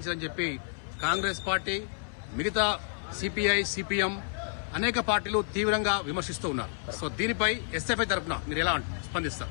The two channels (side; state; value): right; silent; 58 dB below the other